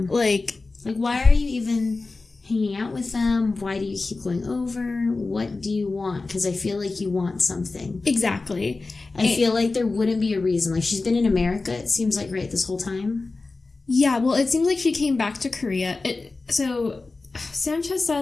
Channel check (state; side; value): quieter; right; 3.7 dB